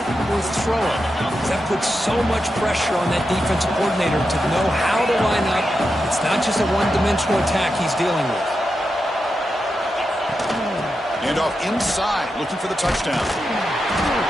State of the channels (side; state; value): both; normal; correlation 0.88